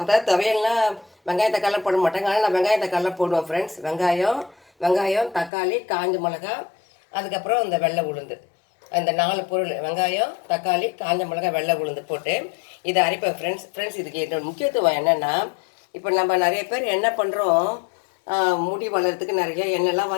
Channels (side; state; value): right; drops out; at 5.5 s